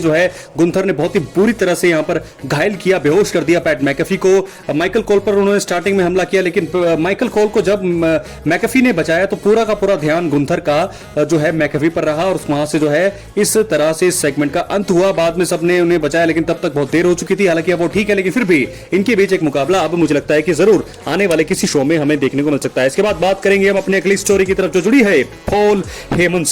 जो है गुंथर ने बहुत ही बुरी तरह से यहां पर घायल किया, बेहोश कर दिया पैट मैकेफी को। माइकल कॉल पर उन्होंने स्टार्टिंग में हमला किया, लेकिन माइकल कॉल को जब मैकेफी ने बचाया तो पूरा का पूरा ध्यान गुंथर का जो है मैकेफी पर रहा और वहां से जो है इस तरह से इस सेगमेंट का अंत हुआ। बाद में सबने उन्हें बचाया, लेकिन तब तक बहुत देर हो चुकी थी। हालांकि अब वो ठीक है, लेकिन फिर भी इनके बीच एक मुकाबला अब मुझे लगता है कि जरूर आने वाले किसी शो में हमें देखने को मिल सकता है। इसके बाद बात करेंगे हम अपने अगली स्टोरी की तरफ जो जुड़ी है पॉल हेमन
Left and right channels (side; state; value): both; identical; correlation 1.00